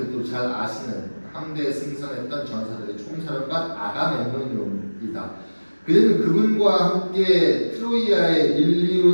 잘 아시는 함대에 승선했던 전사들의 총사령관 아가멤논이다. 그는 그분과 함께 트로이아의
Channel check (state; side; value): inverted; both; correlation -1.00